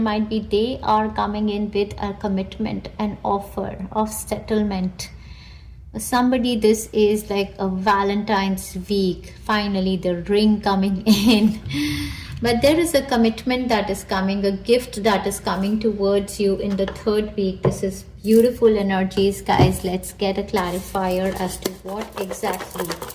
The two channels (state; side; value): identical; both; correlation 1.00